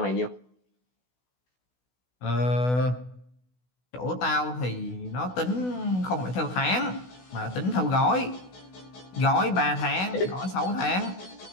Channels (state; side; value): late; right; 16 ms